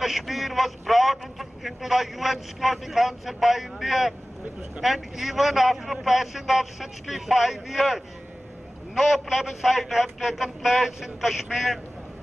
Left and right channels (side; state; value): both; normal; correlation 0.97